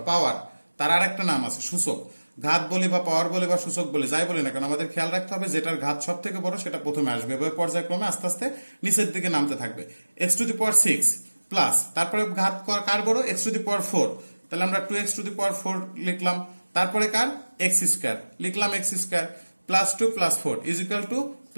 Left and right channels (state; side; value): inverted; both; correlation -1.00